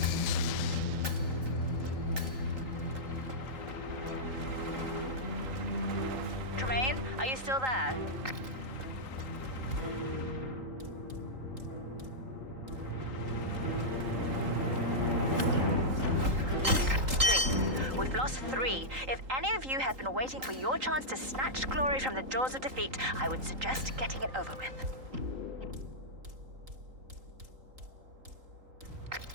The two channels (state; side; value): late; left; 3.8 ms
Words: Are you still there? We've lost 3. If any of you have been waiting for your chance to snatch glory from the jaws of defeat, I would suggest getting it over with.